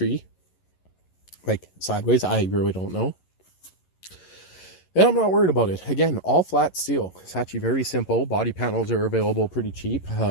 like sideways. I really don't know. And I'm not worried about it. Again, all flat steel. It's actually very simple. Body panels are available pretty cheap.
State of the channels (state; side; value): late; right; 11 ms